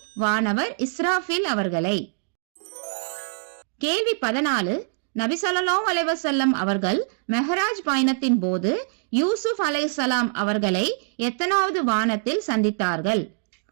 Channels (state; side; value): silent; left; digital silence